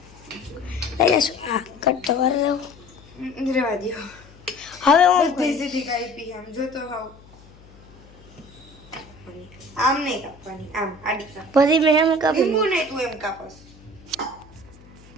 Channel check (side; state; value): left; noise; hum, 24 dB below the sound